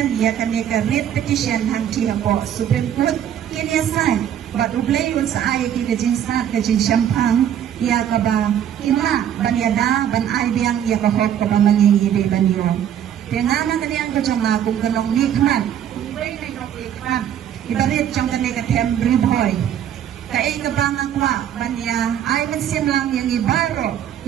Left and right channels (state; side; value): quieter; left; 9.9 dB